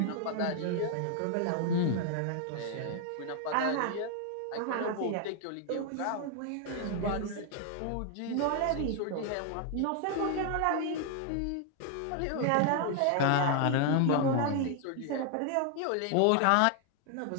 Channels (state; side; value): different; both; correlation 0.00